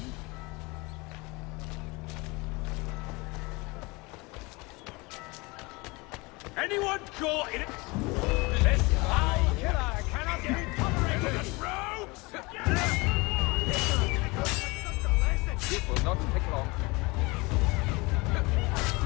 Anyone caught in it? This foul killer cannot be tolerated! Rogues! It will not take long.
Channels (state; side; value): quieter; right; 25.2 dB